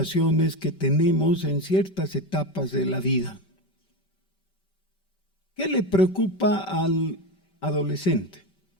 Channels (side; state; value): right; late; 5.3 ms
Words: que tenemos en ciertas etapas de la vida? ¿Qué le preocupa al adolescente?